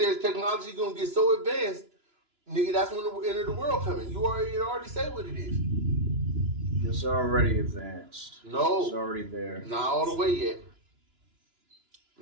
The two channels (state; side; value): late; left; 2.9 ms